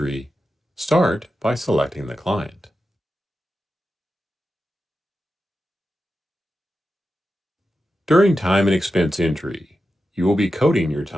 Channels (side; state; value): both; normal; correlation 0.90